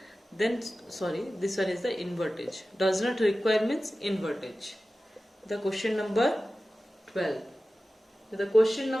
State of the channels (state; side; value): normal; both; correlation 0.95